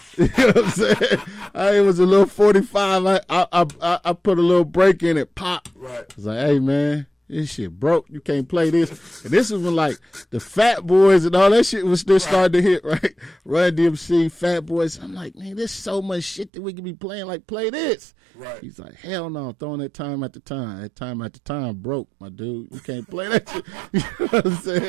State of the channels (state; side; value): drops out; left; at 16.5 s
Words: you know what I'm saying? It was a little 45. I put a little break in it, pop. Right. I was like, hey man, this shit broke. You can't play this. And this was when, like, the Fat Boys and all that shit was still starting to hit, right? Run DMC, Fat Boys. I'm like, man, there's so much shit that we could be playing. Like, play this. Right. He's like, hell no, I'm throwing that time at the time. That time at the time broke, my dude. You can't play that shit. You know what I'm